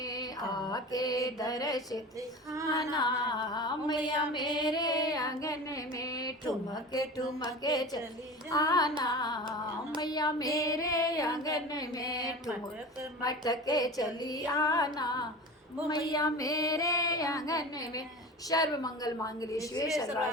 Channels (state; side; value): normal; both; correlation 0.33